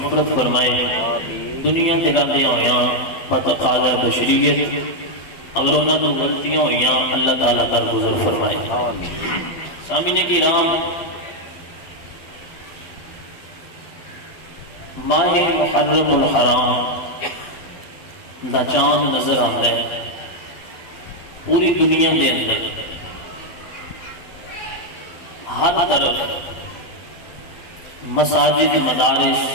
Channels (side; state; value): right; late; 12 ms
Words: فرمائے۔ دنیا تے رہندے ہویاں بتقاضا بشریت اگر انہاں تو غلطیاں ہویاں اللہ تعالیٰ درگزر فرمائے۔ سامعین کرام، ماہ محرم الحرام دا چاند نظر آتا ہے پوری دنیا دے اندر، ہر طرف مساجد، مدارس